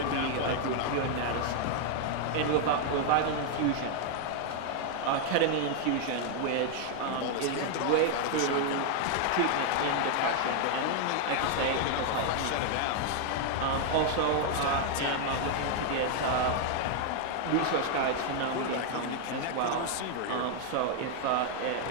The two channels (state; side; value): different; both; correlation 0.00